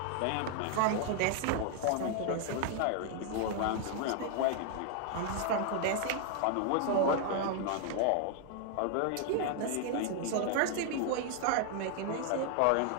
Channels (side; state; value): both; different; correlation 0.00